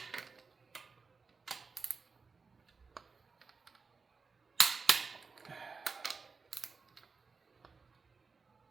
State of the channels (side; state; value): left; quieter; 4.7 dB